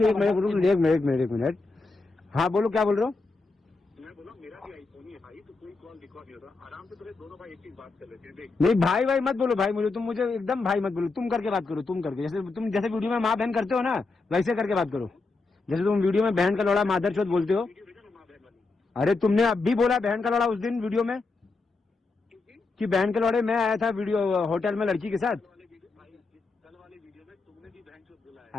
एक मिनट। हाँ बोलो, क्या बोल रहे हो? मैं बोला मेरा भी आईफोन ही है भाई, तो कोई कॉल रिकॉर्ड नहीं होता। आराम से तुम्हें दोनों भाई एक चीज बात कर लेते हैं। देख नहीं भाई भाई मत बोलो भाई, मुझे एकदम भाई मत बोलो, तुम करके बात करो, तुम करके, जैसे वीडियो में माँ बहन करते हो ना, वैसे करके बात करो। जैसे तुम वीडियो में बहन का लौड़ा मादर चौथ बोलते हो। अरे तुमने अब भी बोला बहन का लौड़ा उस दिन वीडियो में, कि बहन के लौड़े मैं आया था वीडियो होटल में लड़की के साथ। कल वाले वीडियो में तुमने भी बहन चोद बोला है।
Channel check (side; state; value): right; quieter; 3.8 dB